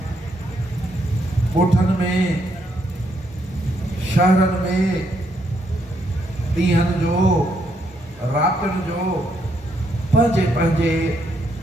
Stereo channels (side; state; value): both; normal; correlation 0.75